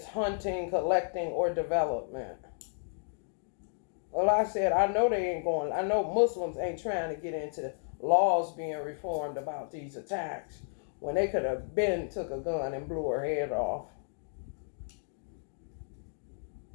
hunting, collecting, or development. Well, I said, I know they ain't going, I know Muslims ain't trying to get into laws being reformed about these attacks when they could have been took a gun and blew her head off.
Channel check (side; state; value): right; silent; digital silence